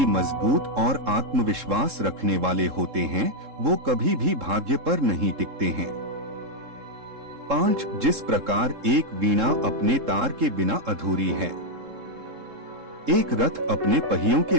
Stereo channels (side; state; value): left; late; 3.7 ms